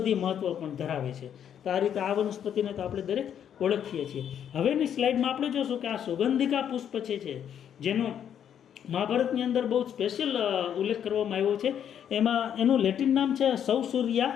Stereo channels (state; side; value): quieter; right; 9.1 dB